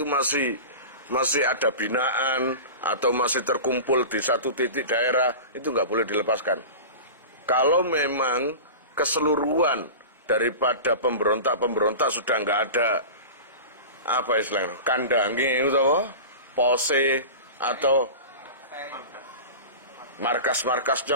masih ada binaan atau masih terkumpul di satu titik daerah, itu nggak boleh dilepaskan. Kalau memang keseluruhan daripada pemberontak sudah nggak ada apa istilahnya kandangi atau pose atau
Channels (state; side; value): inverted; both; correlation -0.32